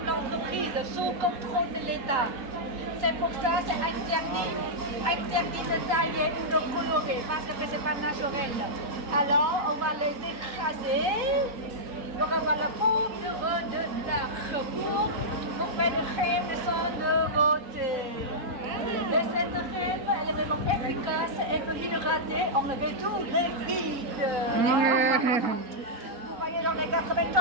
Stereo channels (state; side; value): late; left; 4.0 ms